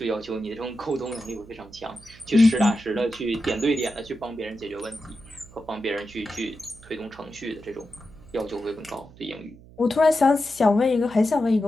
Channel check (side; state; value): right; noise; hum, 22 dB below the sound